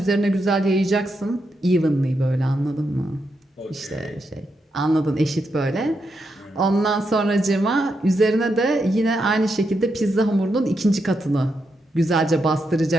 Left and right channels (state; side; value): normal; both; correlation 0.83